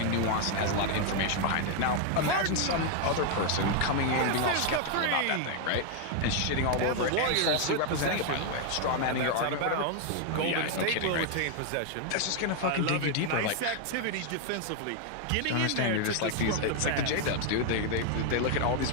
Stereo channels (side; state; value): both; different; correlation 0.00